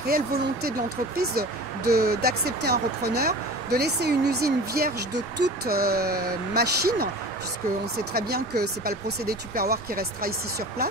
volonté de l'entreprise d'accepter un repreneur, de laisser une usine vierge de toute machine, puisqu'on sait très bien que ce n'est pas le procédé Tupperware qui restera ici sur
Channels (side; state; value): both; normal; correlation 0.38